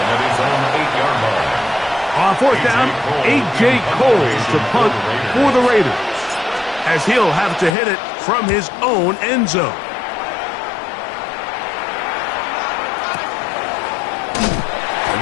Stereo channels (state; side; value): drops out; right; at 7.8 s